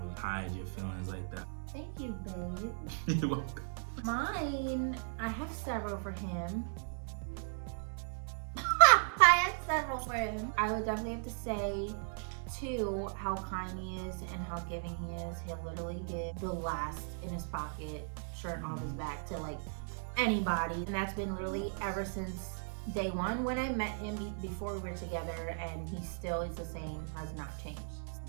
really hide your feelings like that. Thank you, babe. You're welcome. Mine, I have several for him. I have several for him. I would definitely have to say 2, how kind he is and how giving he is. He'll literally give the last in his pocket, shirt off his back to like anybody. And that's been really ever since day one when I met him before we were together, and he still is the same, has not changed.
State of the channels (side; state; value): left; silent; digital silence